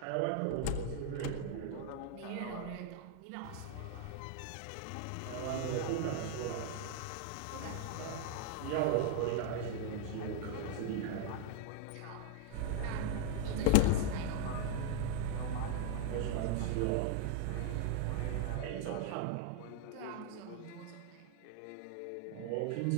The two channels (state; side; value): different; both; correlation 0.00